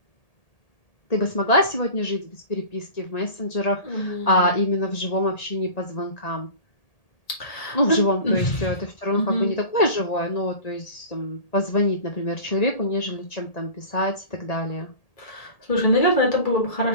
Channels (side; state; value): right; late; 1.8 ms